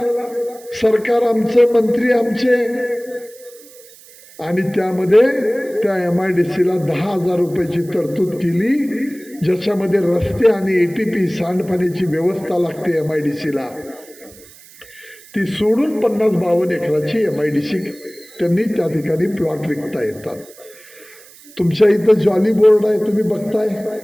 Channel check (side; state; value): right; noise; hiss, 22 dB below the sound